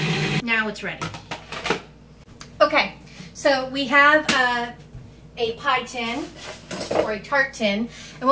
now it's ready. Okay, so we have a pie tin or a tart tin, and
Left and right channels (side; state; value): both; identical; correlation 1.00